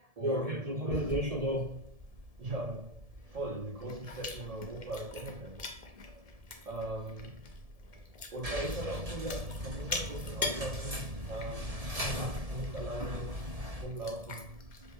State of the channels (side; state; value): left; late; 1.7 ms